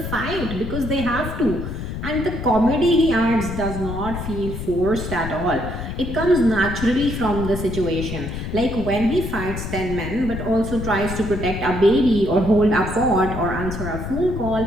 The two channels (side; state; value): left; noise; rumble, 6 dB below the sound